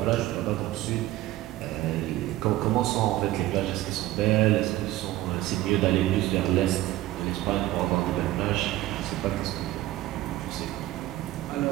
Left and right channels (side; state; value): left; quieter; 16.2 dB